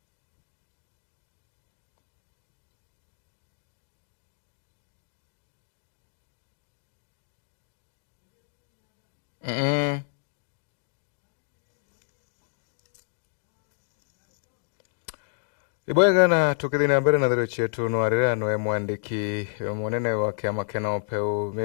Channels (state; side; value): silent; right; digital silence